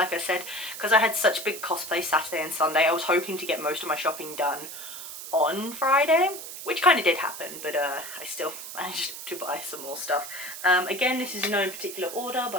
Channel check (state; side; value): noise; right; hiss, 10 dB below the sound